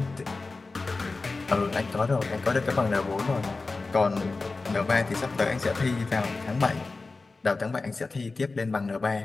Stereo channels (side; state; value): right; quieter; 3.7 dB